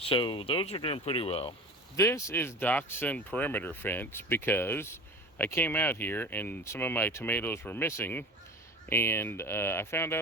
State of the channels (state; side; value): normal; both; correlation 0.35